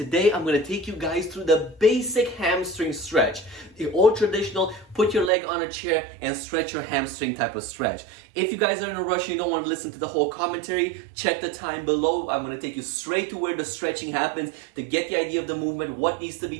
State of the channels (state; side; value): drops out; left; at 5.3 s